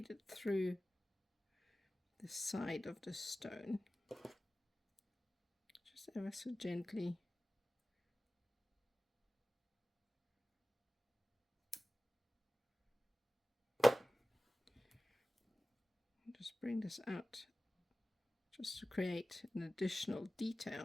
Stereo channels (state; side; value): normal; both; correlation 0.96